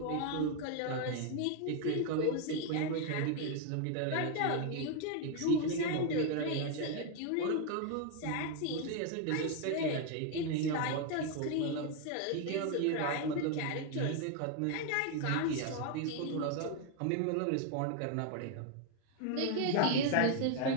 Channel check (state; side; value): different; both; correlation 0.01